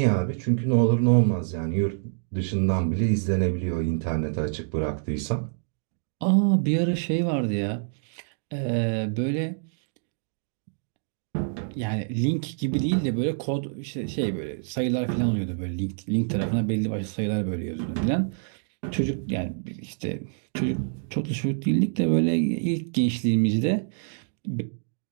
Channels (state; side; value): silent; left; digital silence